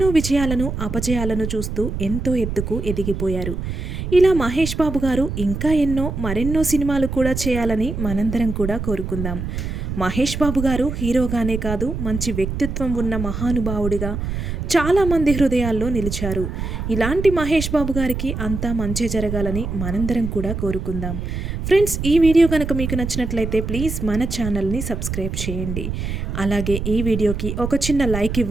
విజయాలను అపజయాలను చూస్తూ ఎంతో ఎత్తుకు ఎదిగిపోయారు. ఇలా మహేష్ బాబు గారు ఇంకా మరెన్నో సినిమాలు కూడా చేయాలని మనందరం కూడా కోరుకుందాం. మహేష్ బాబు గారు హీరోగానే కాదు, మంచి వ్యక్తిత్వం ఉన్న మహానుభావుడిగా చాలామంది హృదయాల్లో నిలిచారు. ఇలాంటి మహేష్ బాబు గారికి అంతా మంచి జరగాలని మనందరం కూడా కోరుకుందాం. ఫ్రెండ్స్, ఈ వీడియో కనుక మీకు నచ్చినట్లయితే ప్లీజ్ మన ఛానల్ని సబ్స్క్రైబ్ చేయండి. అలాగే ఈ వీడియోకి ఒక చిన్న లైక్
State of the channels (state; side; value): noise; right; rumble, 4 dB below the sound